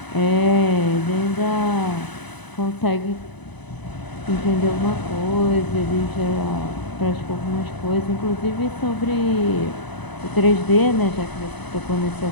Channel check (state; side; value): late; right; 1.0 ms